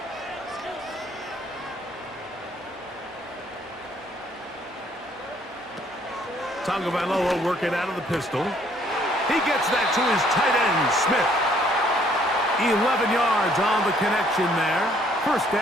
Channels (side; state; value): both; normal; correlation 0.64